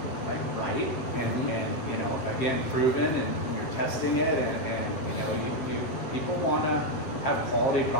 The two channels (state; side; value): late; right; 7.9 ms